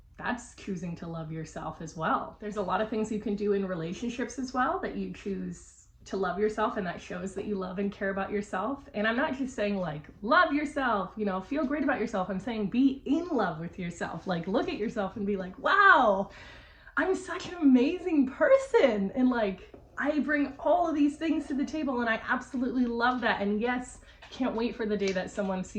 That's choosing to love yourself as well. There's a lot of things you can do in relationships as well that you choose to love yourself, and that shows that you love and care about yourself. And I'm not just saying like love yourself, you know, feel great about yourself. I'm saying be in love with yourself. Like look at yourself and be like, wow, I'm such an amazing person, and like I bring all of these things to the table, and I absolutely love that. And yes, can't wait for the day that someone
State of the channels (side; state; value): both; identical; correlation 1.00